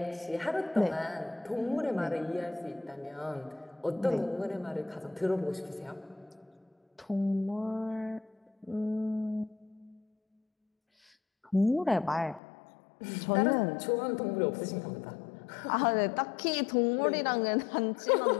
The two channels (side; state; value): right; drops out; at 12.4 s